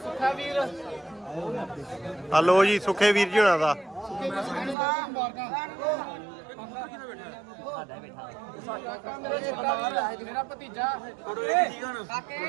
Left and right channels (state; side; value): drops out; left; at 4.8 s